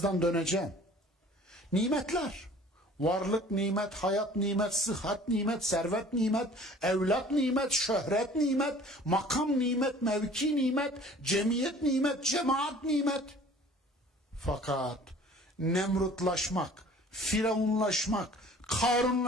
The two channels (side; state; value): both; normal; correlation 0.49